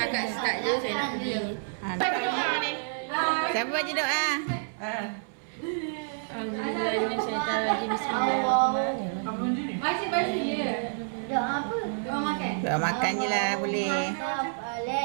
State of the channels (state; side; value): silent; left; 59 dB below the other